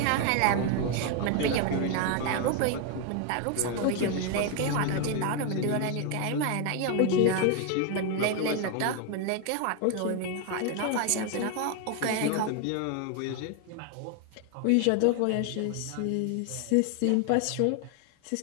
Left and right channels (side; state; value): both; different; correlation 0.01